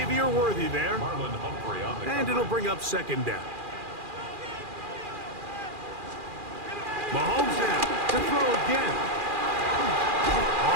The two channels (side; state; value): left; late; 2.4 ms